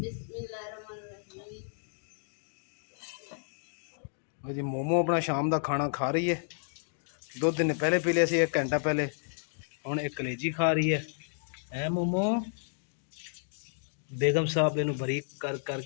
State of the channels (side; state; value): right; silent; digital silence